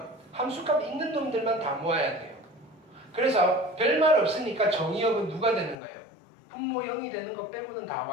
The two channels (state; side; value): drops out; right; at 5.8 s